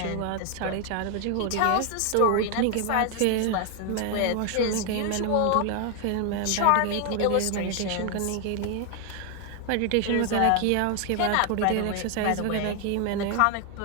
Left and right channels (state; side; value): different; both; correlation 0.01